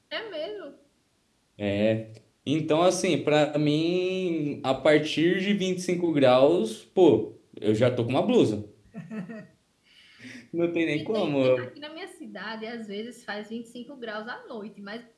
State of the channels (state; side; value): identical; both; correlation 1.00